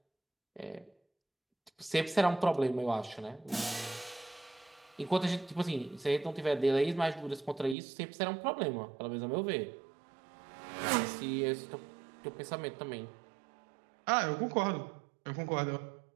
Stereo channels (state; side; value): drops out; left; at 7.8 s